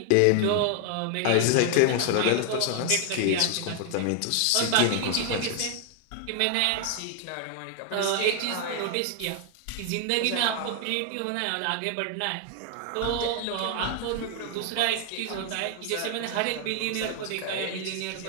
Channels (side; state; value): both; different; correlation 0.00